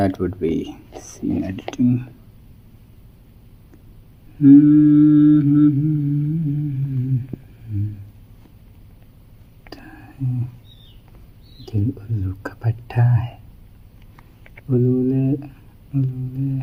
would be scene editing. दिल उल्लू का पट्टा है, उल्लू उल्लू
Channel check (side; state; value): both; identical; correlation 1.00